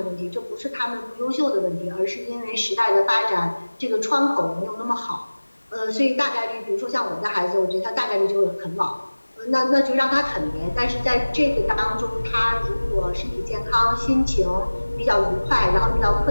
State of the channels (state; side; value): inverted; both; correlation -1.00